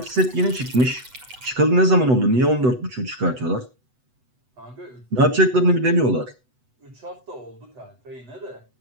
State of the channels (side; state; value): left; late; 8.0 ms